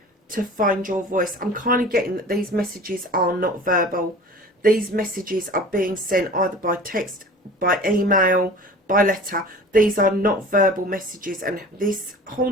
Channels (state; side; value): normal; both; correlation 0.41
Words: to find your voice. I'm kind of getting that these messages are not verbal. These messages are being sent either by text, by email, by letter. These are not verbal messages. And this